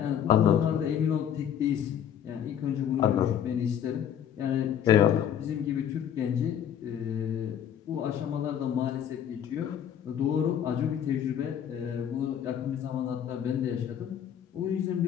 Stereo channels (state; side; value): quieter; right; 9.3 dB